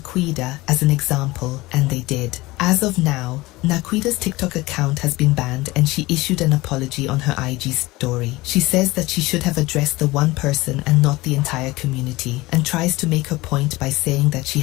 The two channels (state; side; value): quieter; right; 20.5 dB